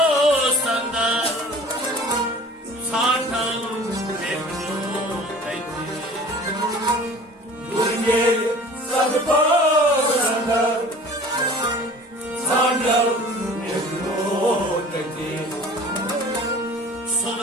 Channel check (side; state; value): both; normal; correlation 0.45